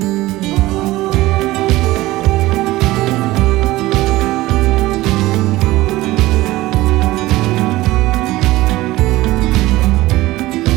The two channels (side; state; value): left; quieter; 18.0 dB